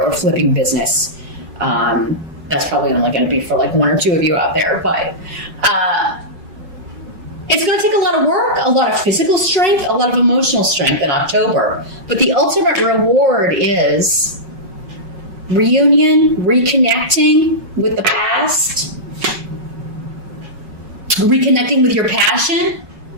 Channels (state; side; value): late; left; 5.4 ms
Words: flipping business. That's probably only going to be for like one or two of you out there, but it's going to take a lot of work, a lot of physical strength, a lot of emotional strength in October. But the ultimate reward is reunion, reconnecting with the past, reconnecting with your passion,